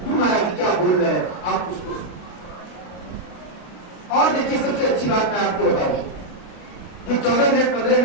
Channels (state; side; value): late; right; 33 ms